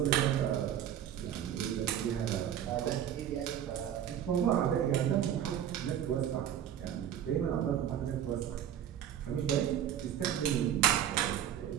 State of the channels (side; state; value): left; quieter; 10.2 dB